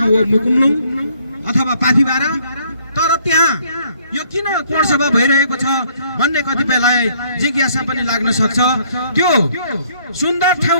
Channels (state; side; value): inverted; both; correlation -0.64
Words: हो मुकुमलुङ अथवा पाथिबारा। तर त्यहाँ यो किन कोणसभा भइरहेको छ भन्ने कतिपयलाई जिज्ञासा पनि लाग्न सक्छ। त्यो सुन्दर